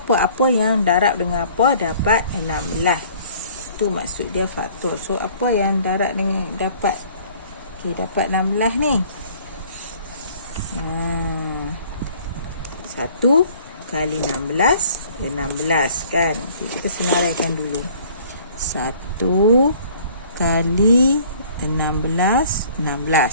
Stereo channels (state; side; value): inverted; both; correlation -0.54